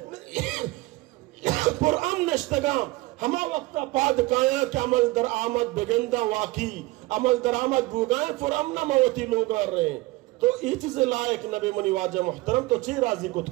قرآن نشتگا ہما وقتا پاد کایا کہ عمل در آمد بگندہ واقعی عمل در آمد بوگائیں فرامنا موتی لوگا رہے. تو ای چیز لائق نبی منی واجہ محترم تو چی راضی کت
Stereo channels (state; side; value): quieter; left; 21.0 dB